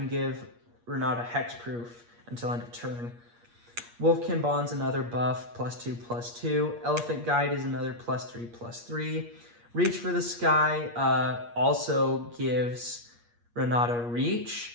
give Renata hexproof until end of turn. Wolfkin Bond's another buff, +2/+2. Elephant Guide is another +3/+3. Reach for the Sky also gives Renata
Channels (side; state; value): left; late; 8.5 ms